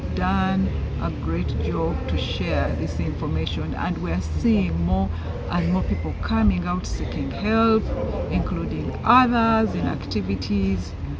done a great job to share this information, and we're seeing more and more people coming out seeking help, including others in activities,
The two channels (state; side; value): identical; both; correlation 1.00